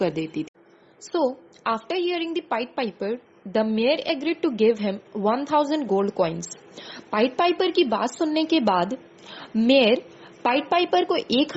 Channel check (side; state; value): both; identical; correlation 1.00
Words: देती थी. So after hearing the pied piper the mayor agreed to give him 1000 gold coins. Pied piper की बात सुनने के बाद मेयर पाइड पाइपर को